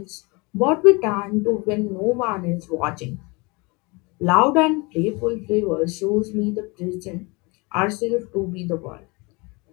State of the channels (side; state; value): right; quieter; 27.5 dB